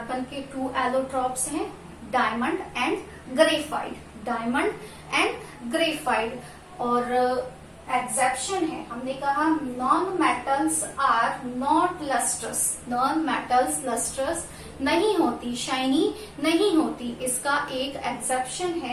के 2 एलोट्रॉप्स हैं, diamond and graphite. Diamond and graphite. और एक्सेप्शन है, हमने कहा non metals are not lustrous. Non metals lustrous नहीं होती, शाइनी नहीं होती। इसका एक एक्सेप्शन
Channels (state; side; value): identical; both; correlation 1.00